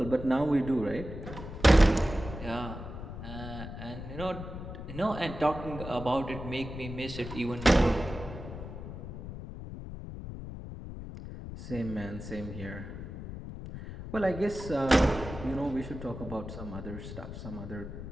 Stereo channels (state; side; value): noise; left; rumble, 9 dB below the sound